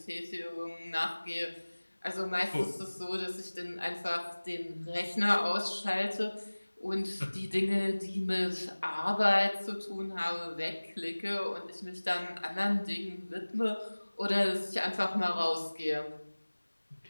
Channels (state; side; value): inverted; both; correlation -1.00